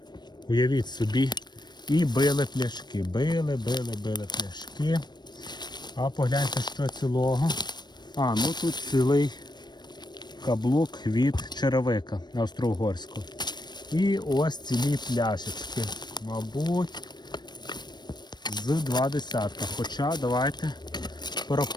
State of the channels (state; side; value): late; right; 0.21 ms